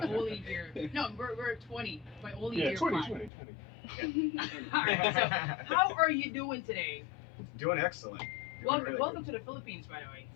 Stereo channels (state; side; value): drops out; right; at 3.3 s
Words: only hear. No, we're 20, but I only hear 5. 20. Alright, so how are you doing today? Doing excellent. Welcome to the Philippines, by the way.